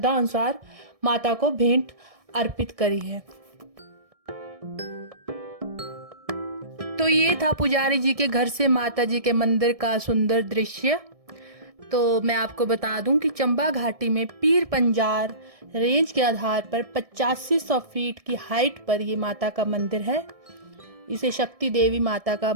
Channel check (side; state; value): left; late; 1.6 ms